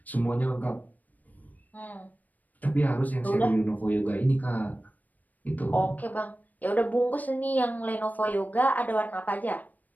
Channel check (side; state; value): right; late; 0.081 ms